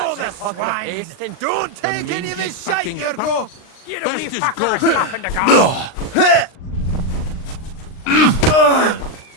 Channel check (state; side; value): late; right; 39 ms